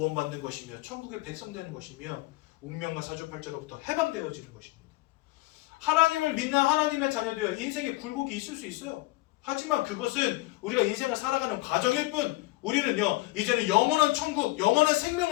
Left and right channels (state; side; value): quieter; right; 20.8 dB